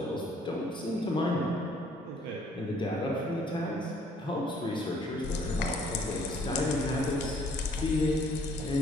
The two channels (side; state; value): both; normal; correlation 0.61